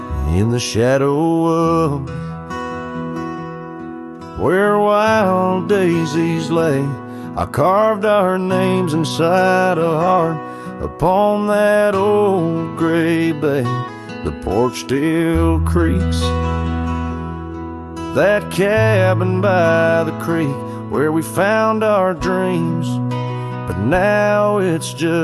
In the shadow of where wild daisies lay, I carved our names inside a heart upon that old gray bay. The porch still creaks, that cabin by the creek where we found our dreams, but now it's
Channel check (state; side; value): identical; both; correlation 1.00